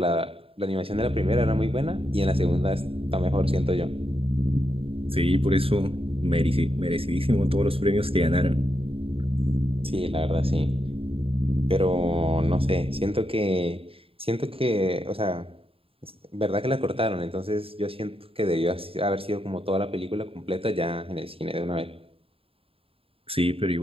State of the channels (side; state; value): left; late; 0.27 ms